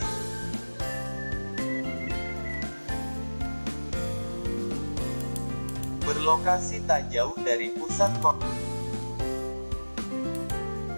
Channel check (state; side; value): inverted; both; correlation -1.00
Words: Berlokasi tak jauh dari pusat kota,